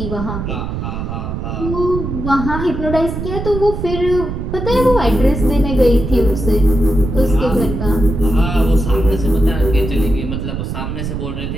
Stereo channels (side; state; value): right; noise; rumble, 5 dB below the sound